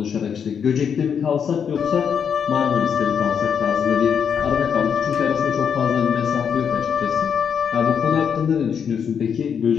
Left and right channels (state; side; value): quieter; right; 7.3 dB